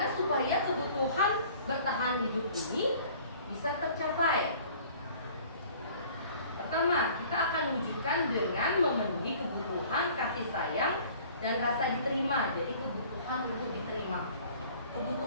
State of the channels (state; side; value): inverted; both; correlation -0.50